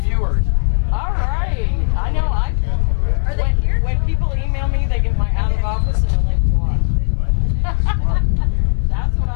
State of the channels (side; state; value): right; silent; digital silence